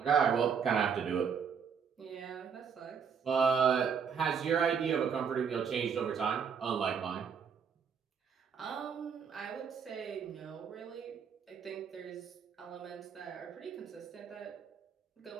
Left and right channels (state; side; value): quieter; left; 6.8 dB